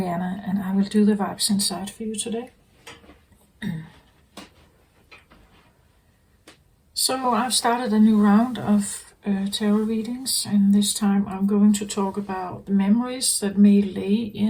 and I will do the vibes inside for you today. So I've started a new round of tarot readings, and this time I'm going to talk about the memories that may lay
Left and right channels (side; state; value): both; identical; correlation 1.00